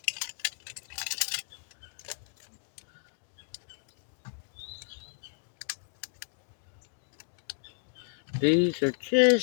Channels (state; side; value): silent; right; digital silence